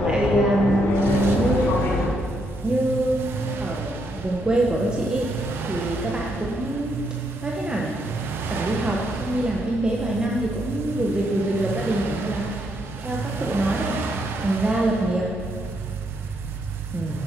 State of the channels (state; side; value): normal; both; correlation 0.76